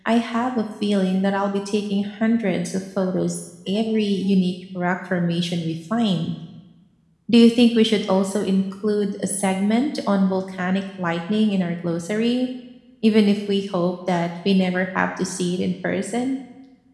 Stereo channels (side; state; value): both; identical; correlation 1.00